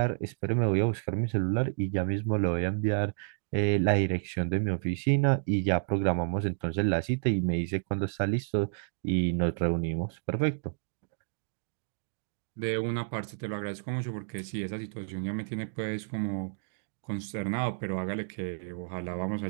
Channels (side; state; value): left; silent; digital silence